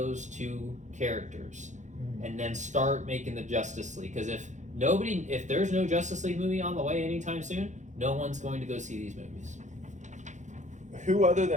two characters and then start making the Justice League. Because if there's no Justice League movie on the way anytime soon, no one's going to go see these movies. Who other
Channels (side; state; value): left; late; 0.35 ms